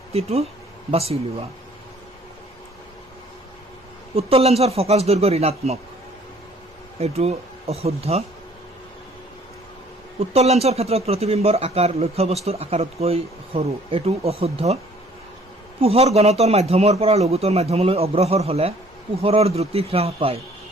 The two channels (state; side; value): normal; both; correlation 0.57